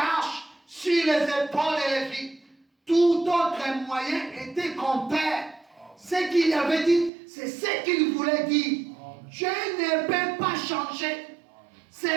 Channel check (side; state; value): left; drops out; at 7.1 s